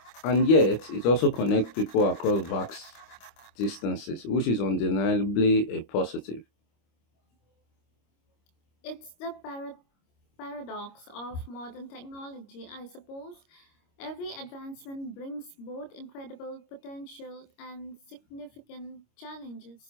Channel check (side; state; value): right; late; 25 ms